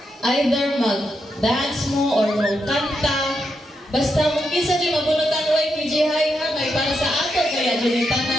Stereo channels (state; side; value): normal; both; correlation 0.83